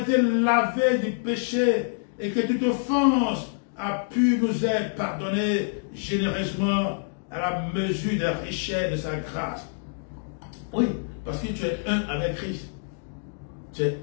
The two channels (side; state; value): right; silent; digital silence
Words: lavés du péché et que toute offense a pu nous être pardonnée généreusement à la mesure des richesses de sa grâce. Oui, parce que tu es un avec Christ. Tu es